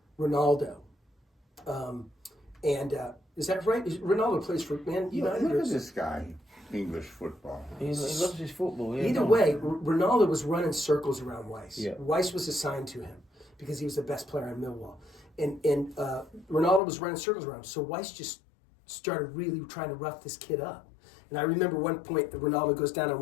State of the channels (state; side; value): drops out; right; at 16.8 s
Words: Ronaldo. Is that right? Ronaldo plays for Man United? Look at this guy, English football. He loves his football. Yeah, Either no. way, Ronaldo was running circles around Weiss. Yeah. Weiss was assigned to him because he was the best player in Millwall. And Ronaldo was running circles around him. So Weiss just started really trying to rough this kid up. And I remember one point that Ronaldo goes down on